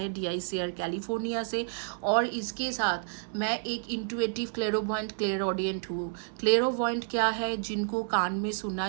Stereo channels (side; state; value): left; silent; 58 dB below the other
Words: DICR कैलिफोर्निया से। और इसके साथ मैं एक इंट्यूटिव क्लेरोवॉइंट क्लेरऑडियंट हूँ। क्लेरोवॉइंट क्या है? जिनको कान में